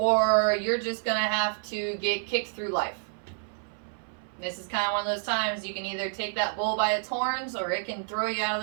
you're just going to have to get kicked through life. This is kind of one of those times you can either take that bull by its horns or it can throw you out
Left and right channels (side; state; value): left; silent; 59 dB below the other